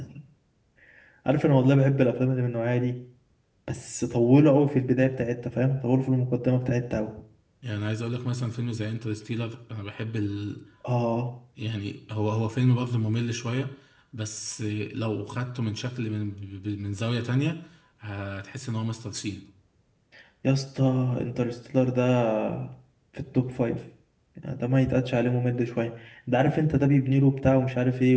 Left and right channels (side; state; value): both; identical; correlation 1.00